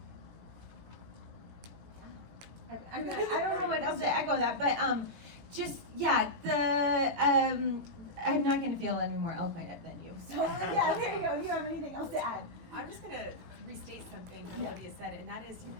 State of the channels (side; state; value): left; late; 18 ms